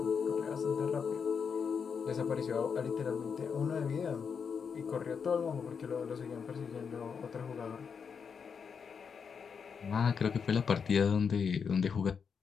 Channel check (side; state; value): right; quieter; 6.3 dB